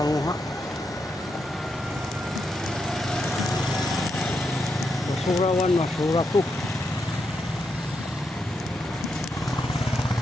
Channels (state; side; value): normal; both; correlation 0.83